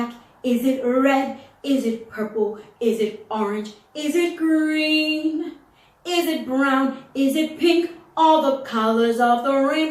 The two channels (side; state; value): both; identical; correlation 1.00